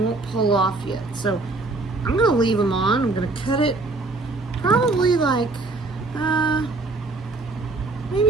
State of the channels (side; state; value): left; quieter; 3.3 dB